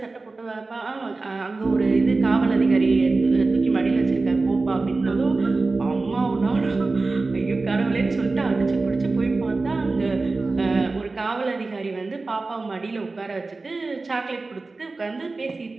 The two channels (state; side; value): quieter; left; 3.6 dB